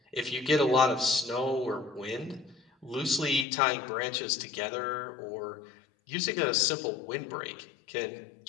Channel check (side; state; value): right; drops out; at 3.5 s